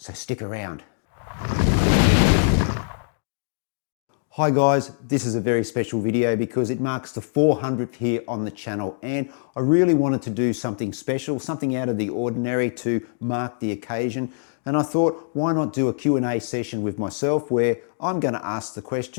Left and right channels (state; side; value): silent; right; digital silence